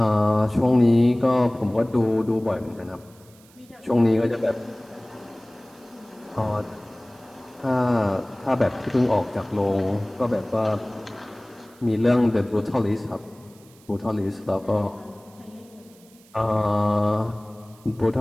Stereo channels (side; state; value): right; noise; hiss, 27 dB below the sound